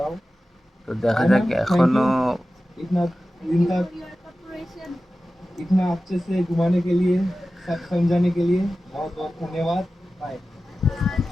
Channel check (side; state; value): both; normal; correlation 0.95